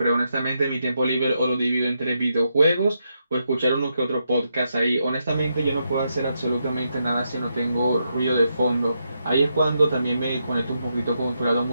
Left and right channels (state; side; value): inverted; both; correlation -0.82